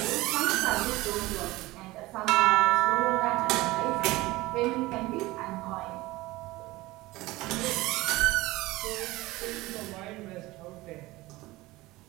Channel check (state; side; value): quieter; left; 19.5 dB